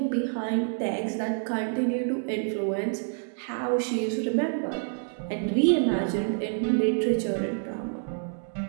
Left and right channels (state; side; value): silent; left; 60 dB below the other